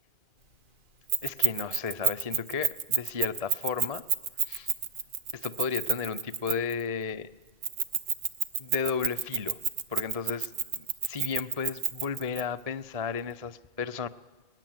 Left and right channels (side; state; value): left; late; 2.4 ms